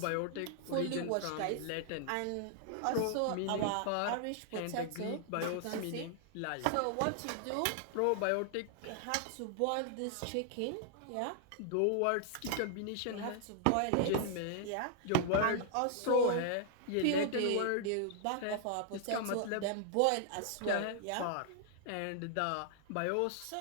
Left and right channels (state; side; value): different; both; correlation 0.00